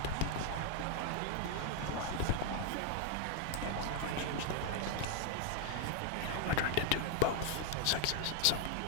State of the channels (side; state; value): both; different; correlation 0.00